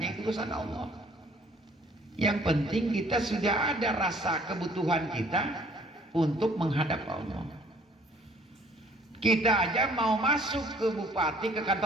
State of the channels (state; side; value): normal; both; correlation 0.58